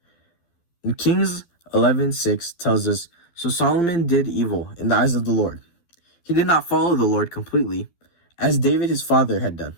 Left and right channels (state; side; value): late; right; 12 ms